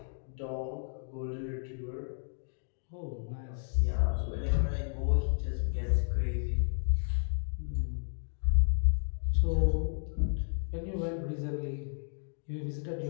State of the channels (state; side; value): silent; right; digital silence